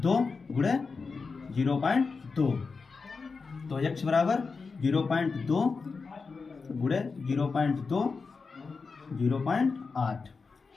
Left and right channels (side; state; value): right; quieter; 4.6 dB